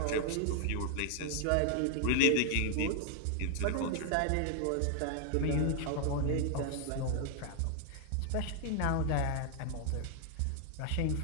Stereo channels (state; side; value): different; both; correlation 0.00